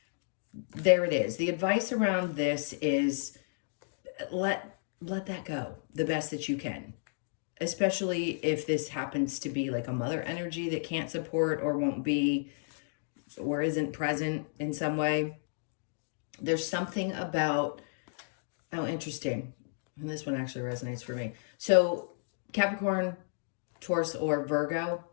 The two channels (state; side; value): silent; right; digital silence